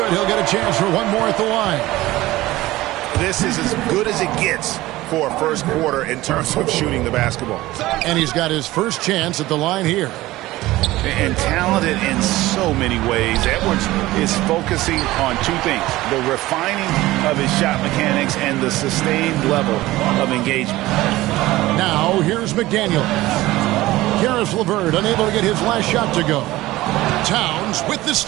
He'll get a chance for one more at the line. This is as good as it gets for a first quarter in terms of shooting the basketball. And he's got his first chance at the line here. And talented in so many ways. Edwards is focusing on two things: the refining of his shot mechanics and the sustained level of engagement. Now here's McDaniel. Karis LeVert unable to get his last shot to go. Towns with the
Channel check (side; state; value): left; quieter; 17.6 dB